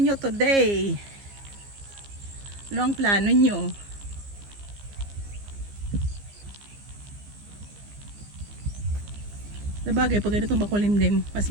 today? Ano ang plano nyo? Sabagay, pag ganitong makulimlim, mas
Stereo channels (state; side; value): late; left; 15 ms